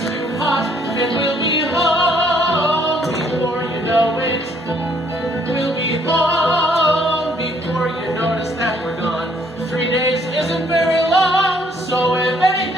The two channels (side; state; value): both; normal; correlation 0.65